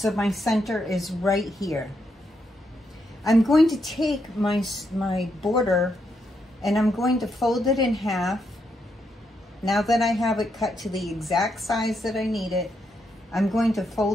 my center is right here. I'm going to take my border and I'm going to fold it in half. Now that I have it cut to the exact size that I need it, I'm going to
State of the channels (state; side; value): normal; both; correlation 0.80